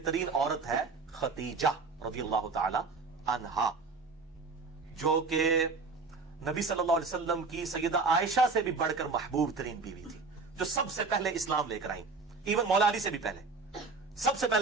عورت ہے خدیجہ رضی اللہ تعالی عنہا، جو کہ نبی صلی اللہ علیہ وسلم کی سیدہ عائشہ سے بھی بڑھ کر محبوب ترین بیوی تھی، جو سب سے پہلے اسلام لے کر آئیں، ایون مولا علی سے بھی پہلے. سب سے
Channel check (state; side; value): quieter; left; 4.2 dB